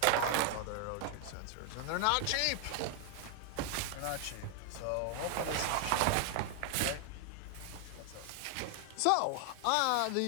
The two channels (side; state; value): both; different; correlation 0.00